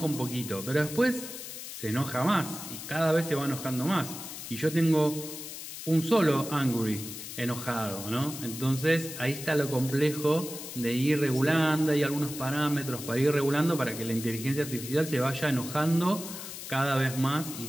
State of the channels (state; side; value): noise; left; hiss, 10 dB below the sound